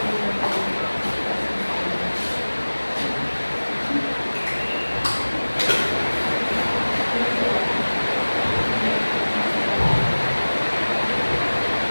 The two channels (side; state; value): both; inverted; correlation -1.00